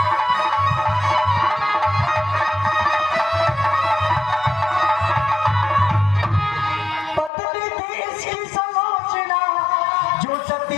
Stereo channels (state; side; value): drops out; right; at 7.3 s